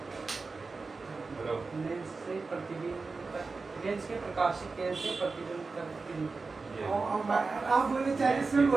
हेलो लेंस से प्रतिबिंब तक, लेंस के प्रकाशिक किरण से प्रतिबिंब तक की दूरी। आप बोले 40 में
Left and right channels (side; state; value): left; quieter; 4.1 dB